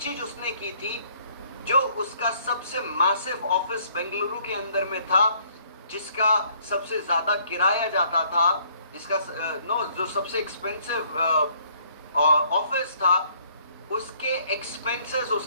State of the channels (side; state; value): both; inverted; correlation -0.63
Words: उसने की थी, जो उसका सबसे मैसिव ऑफिस बेंगलुरु के अंदर में था, जिसका सबसे ज्यादा किराया जाता था, जिसका जो सबसे एक्सपेंसिव ऑफिस था, उसके एक्सपेंसेस